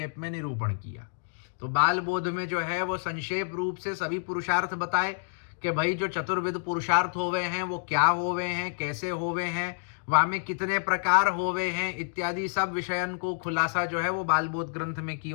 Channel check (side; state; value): right; silent; digital silence